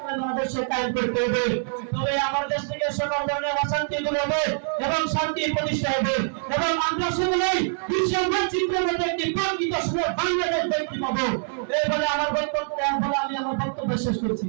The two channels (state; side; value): silent; left; 62 dB below the other